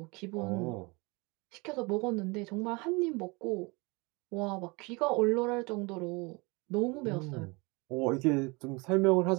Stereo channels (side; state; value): left; quieter; 27.3 dB